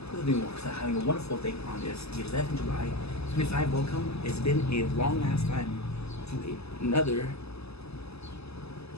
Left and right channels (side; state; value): right; late; 0.79 ms